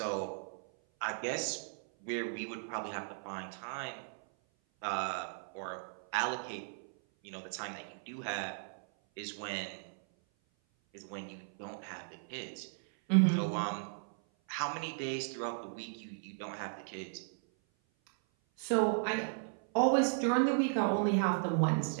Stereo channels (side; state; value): left; silent; 54 dB below the other